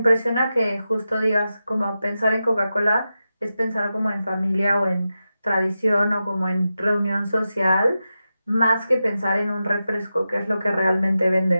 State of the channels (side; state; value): both; inverted; correlation -0.91